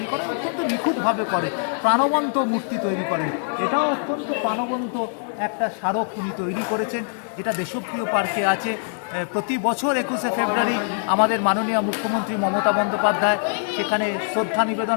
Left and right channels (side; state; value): right; silent; 63 dB below the other